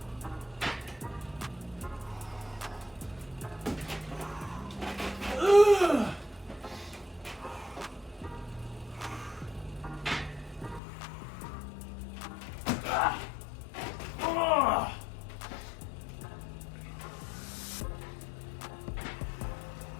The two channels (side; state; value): right; drops out; at 10.8 s